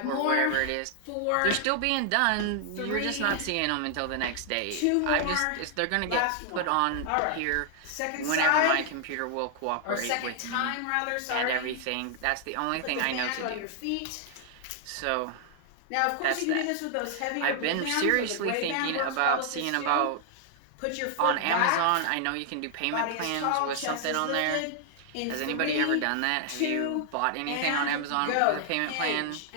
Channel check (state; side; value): different; both; correlation 0.00